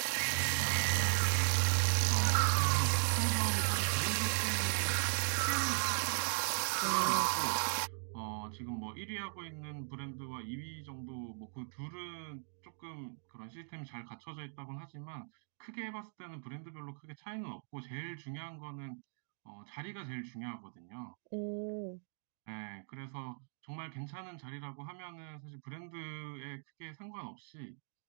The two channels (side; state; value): left; silent; digital silence